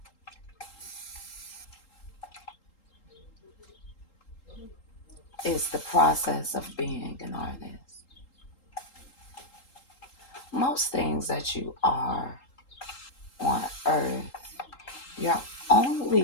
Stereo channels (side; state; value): right; late; 3.8 ms